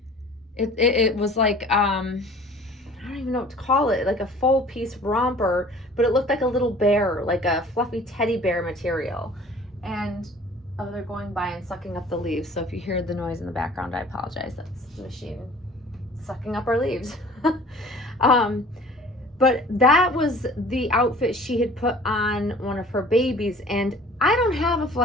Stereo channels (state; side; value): normal; both; correlation 0.48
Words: it was like I don't even know what to call it, like a full piece romper, but it looked like a little bear, like a fluffy teddy bear material. And oh, they're going by and sucking up the leaves. So if you hear the noise in the background, I apologize. That's the machine sucking up our leaves. But that was the outfit she had put on one of her babies. And I don't have a